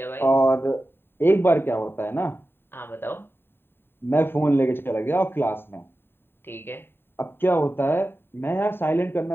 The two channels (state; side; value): late; right; 0.11 ms